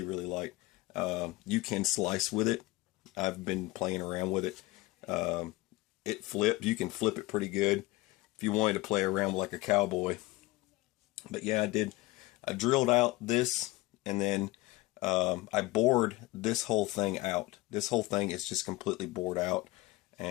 really light. You can slice with it. I've been playing around with it. It flipped. You can flip it pretty good if you wanted to play around like a cowboy. But yeah, I did. I drilled out this, and then I bored this whole thing out. This whole thing is just completely bored out,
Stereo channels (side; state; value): right; quieter; 20.3 dB